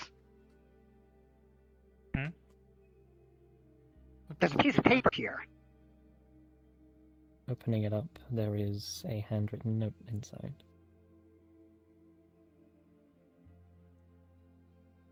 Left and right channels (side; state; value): both; identical; correlation 1.00